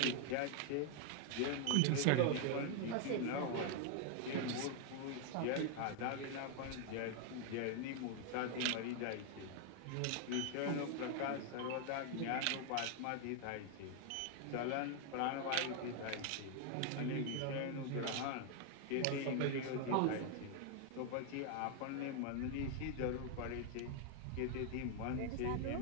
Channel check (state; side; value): different; both; correlation 0.00